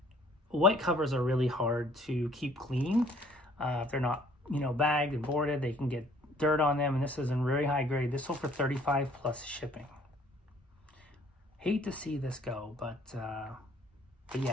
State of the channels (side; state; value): both; normal; correlation 0.58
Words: white covers are really hard to keep clean. If they're not, bagged and boarded, they can get dirt on them. And this is in very high grade. This sold for $35 plus shipping. Hate to see this go, but